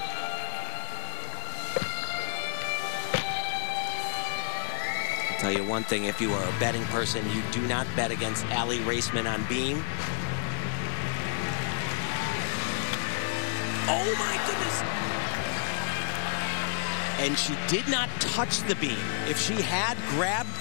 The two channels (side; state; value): right; silent; digital silence